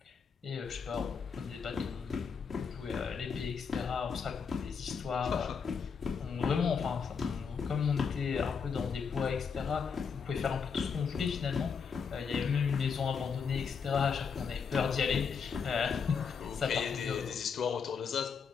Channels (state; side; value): quieter; right; 6.0 dB